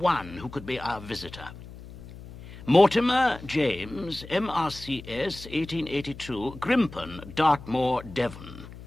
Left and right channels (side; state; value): left; noise; hum, 15 dB below the sound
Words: who could be our visitor. Mortimer James, MRCS, 1882, Grimpen, Dartmoor, Devon.